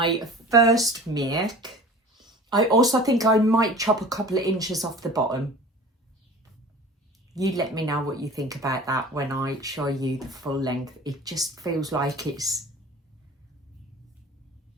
first make. I also think I might chop a couple of inches off the bottom. You let me know what you think about that when I show you the full length. It just feels like it's,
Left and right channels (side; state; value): both; normal; correlation 0.41